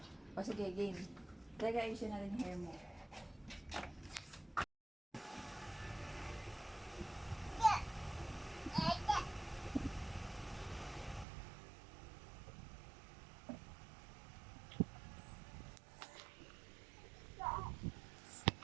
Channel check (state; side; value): drops out; left; at 11.2 s